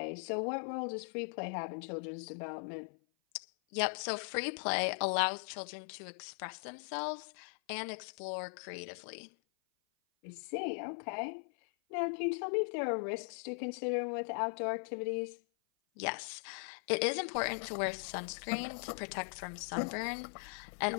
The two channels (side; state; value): right; silent; 52 dB below the other